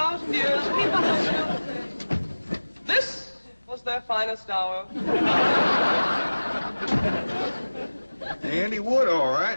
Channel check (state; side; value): inverted; both; correlation -1.00